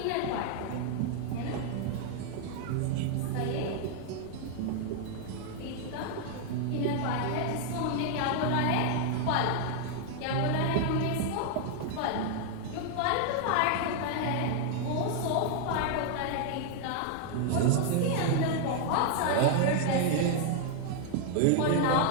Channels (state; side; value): different; both; correlation 0.00